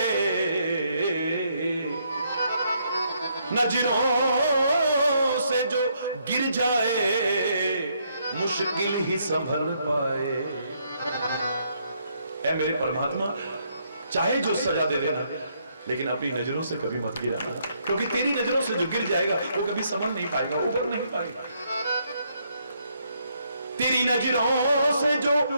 नजरों से जो गिर जाए, मुश्किल ही संभल पाए। ऐ मेरे परमात्मा, चाहे जो सजा दे देना, लेकिन अपनी नजरों से कभी मत गिराना, क्योंकि तेरी नजरों से जो गिर जाएगा वो कभी संभल नहीं पाएगा, उबर नहीं पाएगा। तेरी नजरों से जो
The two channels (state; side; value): inverted; both; correlation -0.73